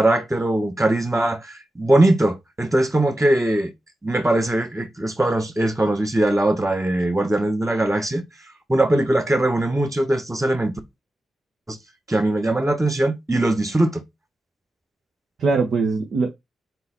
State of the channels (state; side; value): normal; both; correlation 0.92